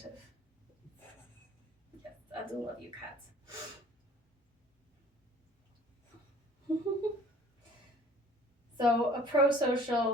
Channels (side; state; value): both; normal; correlation 0.51